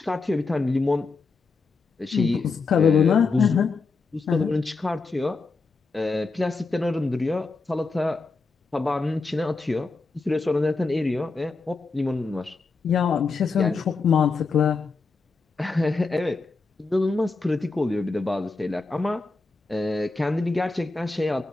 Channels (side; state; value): right; quieter; 4.1 dB